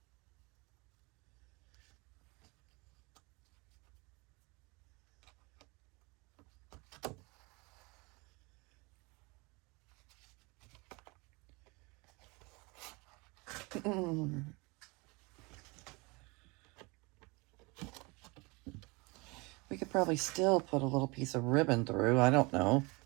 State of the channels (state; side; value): quieter; left; 27.0 dB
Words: We could probably still put a little piece of ribbon through. I don't know.